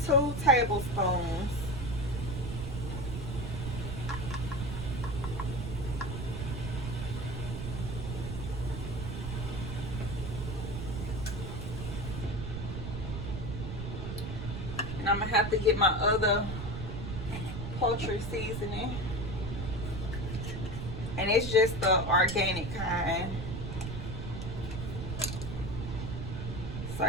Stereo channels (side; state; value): right; noise; rumble, 5 dB below the sound